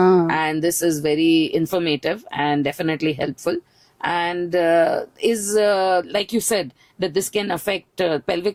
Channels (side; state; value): both; identical; correlation 1.00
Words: And this is very informative and definitely helpful. And like you said, that this can affect,